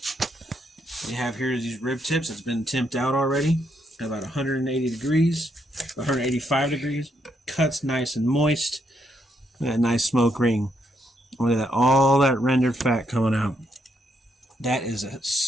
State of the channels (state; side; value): normal; both; correlation 0.76